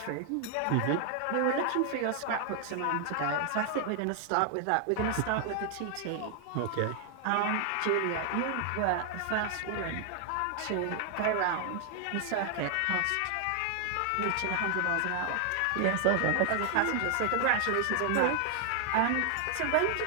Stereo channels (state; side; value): different; both; correlation 0.00